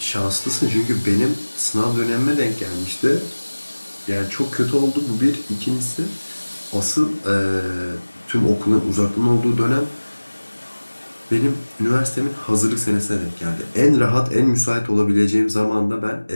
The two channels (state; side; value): inverted; both; correlation -1.00